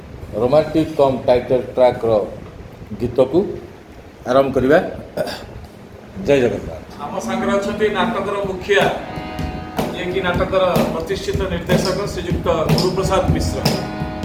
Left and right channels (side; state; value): both; identical; correlation 1.00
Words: रोमांटिक कम टाइटल ट्रैक गीत को आरंभ करवा। जय जगन्नाथ। आम सांगे अच्छा नाटकर मुखिया ये कि नाटकर प्रतिष्ठित निर्देशक श्रीयुक्त गुरुप्रसाद मिश्र